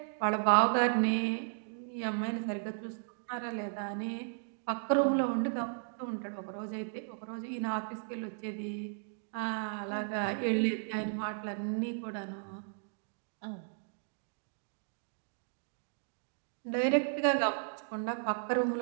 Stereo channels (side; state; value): left; silent; digital silence